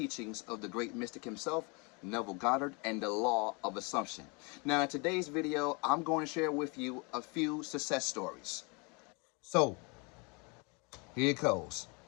of the great mystic himself, Neville Goddard, and the law of assumption. Now in today's video, I'm going to share with you a few success stories. So, here it goes.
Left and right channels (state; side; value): quieter; right; 30.9 dB